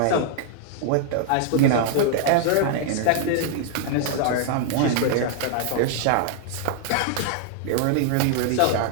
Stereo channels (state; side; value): different; both; correlation 0.00